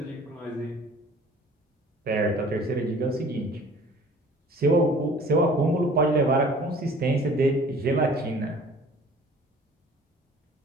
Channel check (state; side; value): normal; both; correlation 0.49